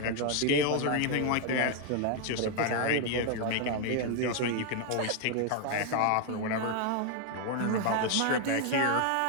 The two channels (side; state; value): both; different; correlation 0.01